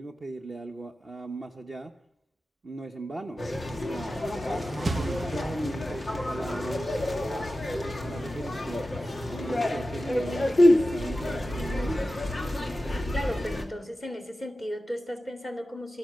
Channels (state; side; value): normal; both; correlation 0.94